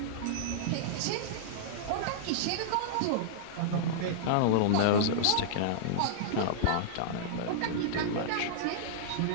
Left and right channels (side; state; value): both; different; correlation -0.02